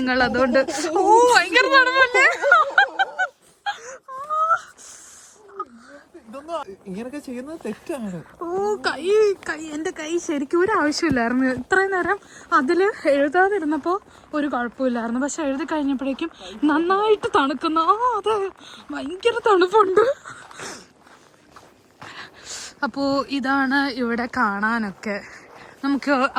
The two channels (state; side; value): identical; both; correlation 1.00